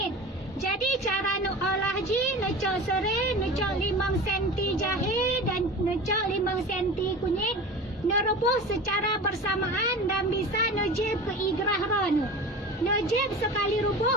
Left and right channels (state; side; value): normal; both; correlation 0.33